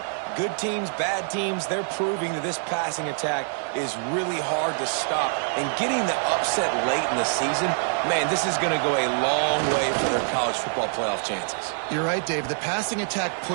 Good teams, bad teams, they're proving that this passing attack is really hard to stop. And getting the upset late in the season, man, this is going to go a long way for their college football playoff chances. You're right, Dave. The passing attack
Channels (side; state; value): left; silent; 61 dB below the other